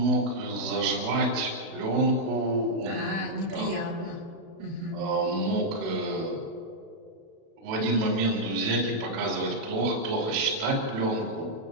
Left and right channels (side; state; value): left; late; 37 ms